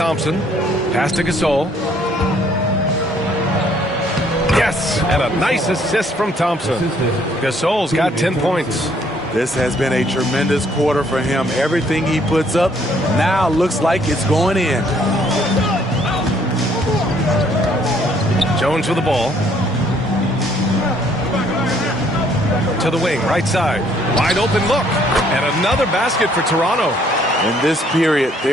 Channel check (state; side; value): normal; both; correlation 0.64